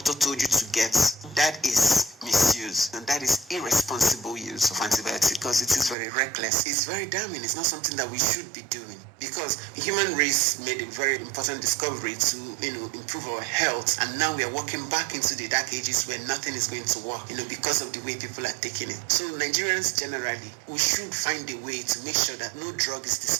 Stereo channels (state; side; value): drops out; left; at 6.0 s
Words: told you to get, that is misuse, and that is irresponsible use of antibiotics, because it is very reckless. It's very damning. It's not something that we should be doing, because the human race made a very important discovery to, improve our health, and now we are walking back into the dark ages where nothing is going to work, because of the way people are taking it. So Nigerians generally, we should find a way to make sure that no drug is